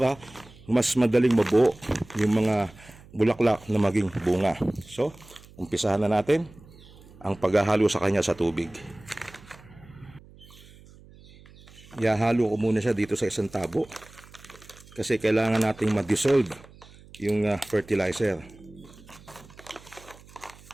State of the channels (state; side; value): noise; right; hum, 23 dB below the sound